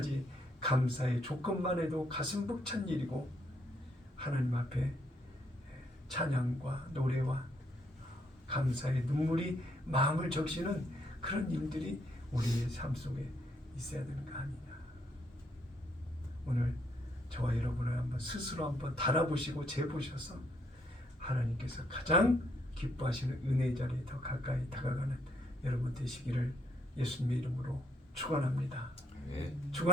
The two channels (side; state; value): both; normal; correlation 0.72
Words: 감사의 조건만 해도 가슴 벅찬 일이고 하나님 앞에 찬양과 노래와 감사의 눈물이 마음을 적시는 그런 일들이 우리의 삶 속에 있어야 되는 거 아니냐. 오늘 저와 여러분을 스스로 한번 달아보시고 재보셔서 하나님께서 가장 기뻐하시는 은혜의 자리에 더 가까이 다가가는 여러분 되시기를 예수님의 이름으로 축원합니다.